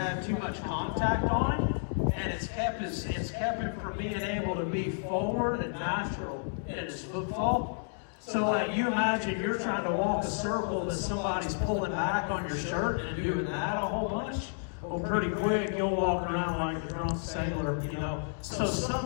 too much contact on him, and it's kept him from being able to be forward and natural in his footfall. So like you imagine you're trying to walk a circle that somebody's pulling back on your shirt and doing that a whole bunch. Well, pretty quick you'll walk around like a drunk sailor, you know. So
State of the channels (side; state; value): right; silent; digital silence